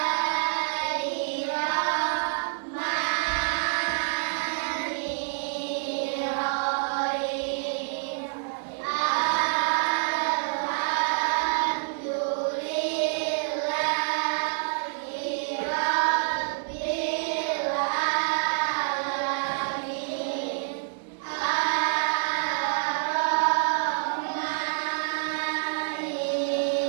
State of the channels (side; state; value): left; silent; digital silence